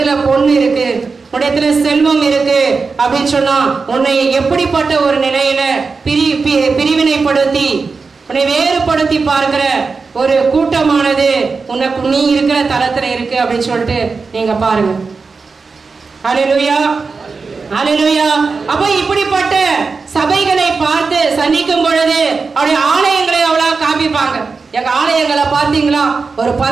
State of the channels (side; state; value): left; quieter; 4.6 dB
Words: பொண்ணு இருக்கு, உன்னிடத்துல செல்வம் இருக்கு அப்படின்னு சொன்னா உன்னை எப்படிப்பட்ட ஒரு நிலையில பிரிவினைப்படுத்தி உன்னை வேறுபடுத்தி பார்க்கிற ஒரு கூட்டமானது உனக்கு நீ இருக்கிற தளத்துல இருக்கு அப்படின்னு சொல்லிட்டு நீங்க பாருங்க. ஹல்லேலூயா, ஹல்லேலூயா. அப்ப இப்படிப்பட்ட சபைகளை பார்த்து சந்திக்கும் பொழுது அவருடைய ஆலயங்களை அவ்வளவு காமிப்பாங்க. எங்க ஆலயங்களை பார்த்தீங்களா, ஒரு